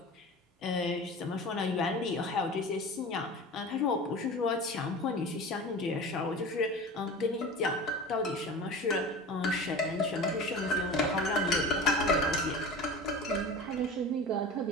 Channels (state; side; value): normal; both; correlation 0.34